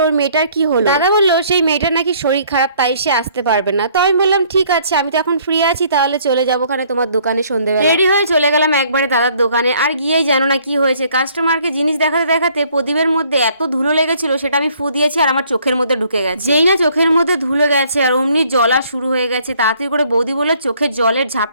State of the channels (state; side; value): inverted; both; correlation -0.61